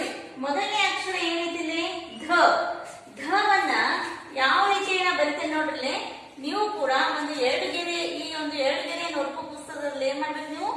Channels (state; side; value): identical; both; correlation 1.00